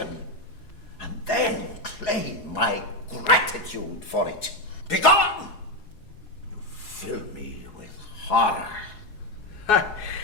and then claim my gratitude for it. Begone! You fill me with horror. Ha!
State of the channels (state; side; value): late; right; 4.7 ms